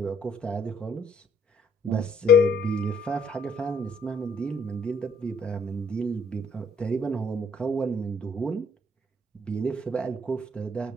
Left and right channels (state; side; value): normal; both; correlation 0.63